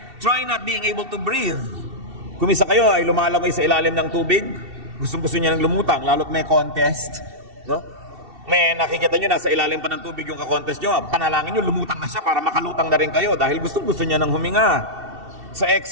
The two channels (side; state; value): left; late; 2.7 ms